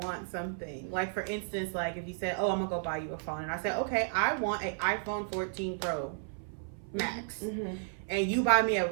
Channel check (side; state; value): left; silent; 56 dB below the other